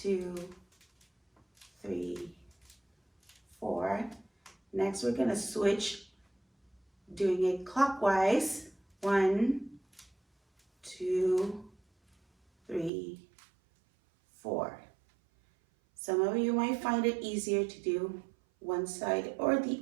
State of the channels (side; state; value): left; drops out; at 12.9 s